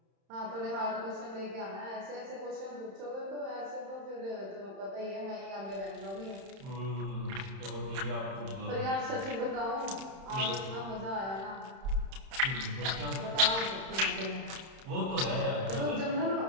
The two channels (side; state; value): left; late; 31 ms